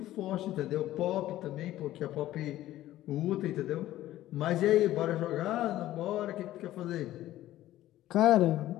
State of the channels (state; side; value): quieter; right; 14.4 dB